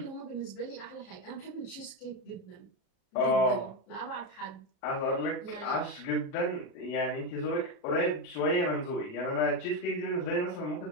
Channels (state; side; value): late; right; 37 ms